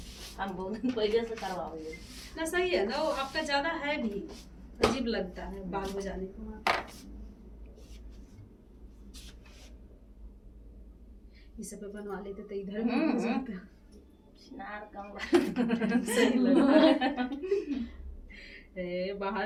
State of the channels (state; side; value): identical; both; correlation 1.00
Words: हम बहुत दिन पहले से करवाओगे ना। सही है ना, वो आपका ज्यादा है भी, अजीब लगता है बाल हो जाने के बाद। ये सब बनवा लेते तो इधर भी हो जाता। नार कम सही लगता है।